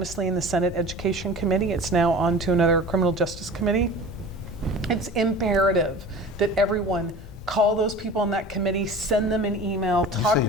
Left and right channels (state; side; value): normal; both; correlation 0.39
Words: in the Senate Education Committee. It's now on to another Criminal Justice Committee. It's imperative that everyone call those people on that committee, send them an email, talk